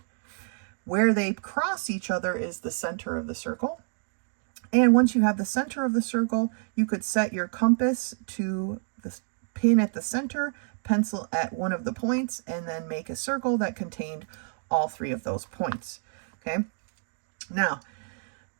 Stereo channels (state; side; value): silent; left; 59 dB below the other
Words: Where they cross each other is the center of the circle. And once you have the center of the circle, you could set your compass to the pin at the center, pencil at one of the points, and then make a circle that contained all three of those points. Okay. Now,